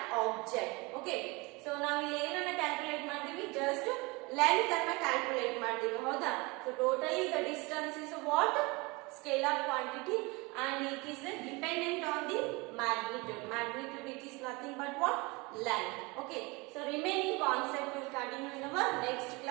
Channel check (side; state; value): left; quieter; 25.7 dB